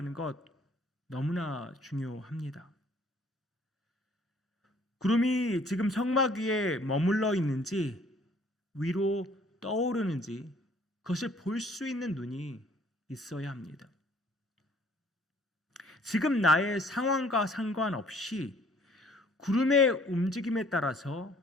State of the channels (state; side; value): normal; both; correlation 0.59